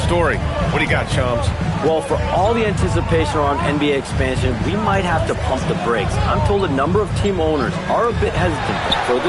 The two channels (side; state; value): both; identical; correlation 1.00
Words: story. What do you got, Shams? Well, for all the anticipation around NBA expansion, we might have to pump the brakes. I'm told a number of team owners are a bit hesitant to